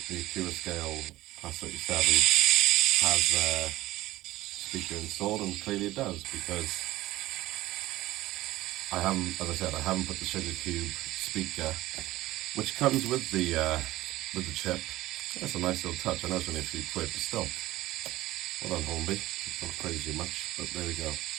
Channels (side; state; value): left; quieter; 16.8 dB